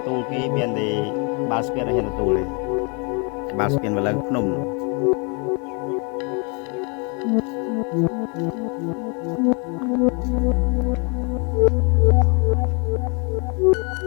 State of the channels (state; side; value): quieter; right; 34.2 dB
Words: tu cái miền thì ba spiên hiện tu này ba spiên và lần phun